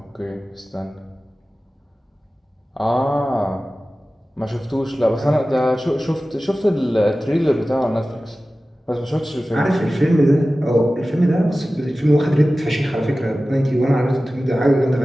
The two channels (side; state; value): both; normal; correlation 0.96